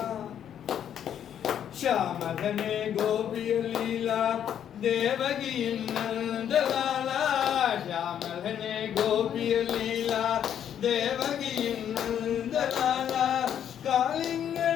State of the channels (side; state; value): right; quieter; 9.5 dB